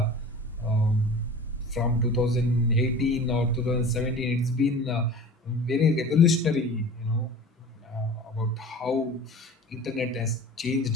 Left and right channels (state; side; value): normal; both; correlation 0.39